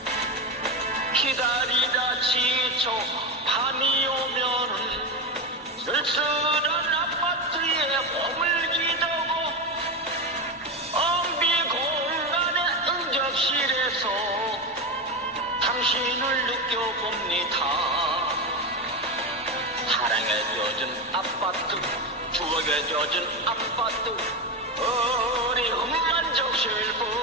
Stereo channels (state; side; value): normal; both; correlation 0.15